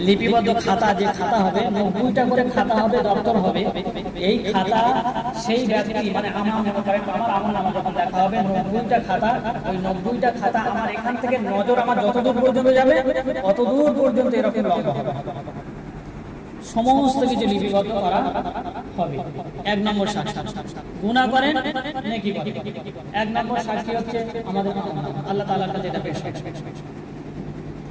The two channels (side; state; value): both; identical; correlation 1.00